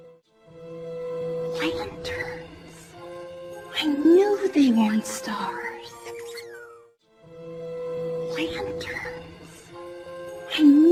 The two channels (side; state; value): both; identical; correlation 1.00